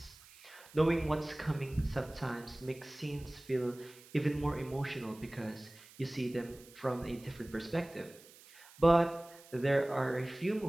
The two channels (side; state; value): right; noise; hiss, 22 dB below the sound